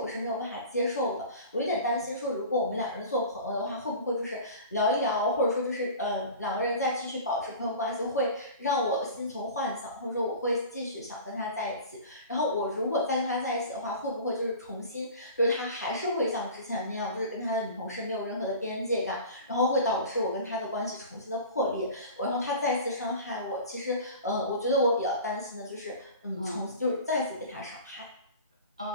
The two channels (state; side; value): inverted; both; correlation -0.38